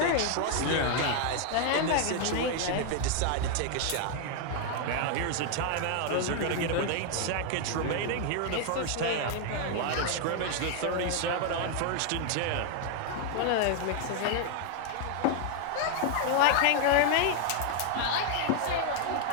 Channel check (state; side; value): different; both; correlation 0.00